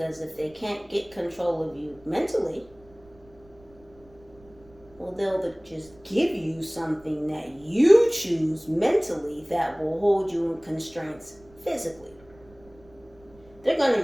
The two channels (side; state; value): right; noise; rumble, 27 dB below the sound